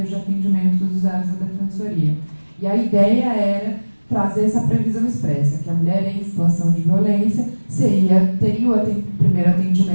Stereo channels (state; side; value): inverted; both; correlation -1.00